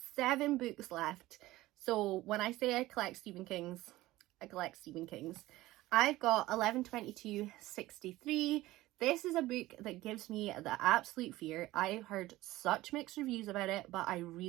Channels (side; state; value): left; quieter; 17.4 dB